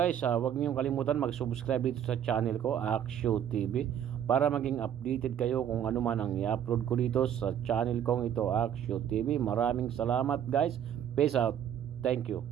huwag niyong kalimutan mag-subscribe dito sa channel ko, Aksyo TV, para maging updated kayo kung ano man ang i-upload ko dito sa channel kong ito, Aksyo TV. Maraming salamat guys. Peace out. Thank you.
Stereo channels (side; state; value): left; quieter; 9.6 dB